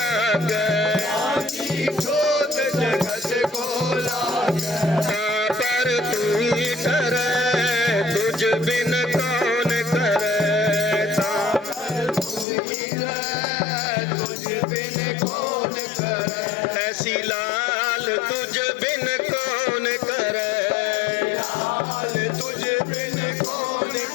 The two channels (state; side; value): drops out; right; at 12.5 s